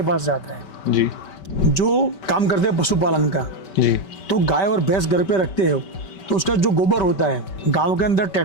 पास जाता है जी। जो काम करते हैं पशुपालन का जी। तो गाय और भैंस घर पे रखते हो तो उसका जो गोबर होता है गाँव के अंदर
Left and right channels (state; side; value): late; right; 5.2 ms